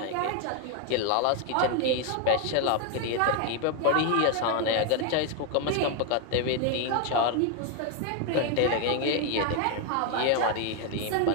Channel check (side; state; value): both; different; correlation 0.01